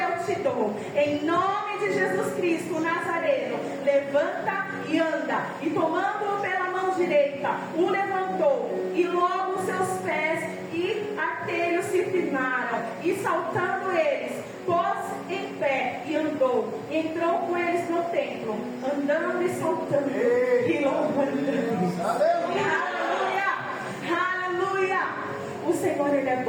te dou. Em nome de Jesus Cristo, o Nazareno, levanta e anda. E tomando-o pela mão direita, o levantou, e logo seus pés e artelhos se firmaram, e saltando eles, pôs em pé e andou. E entrou com eles no templo, andando e saltando e louvando Deus. Aleluia! Aleluia! O Senhor, Ele é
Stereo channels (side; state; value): both; identical; correlation 1.00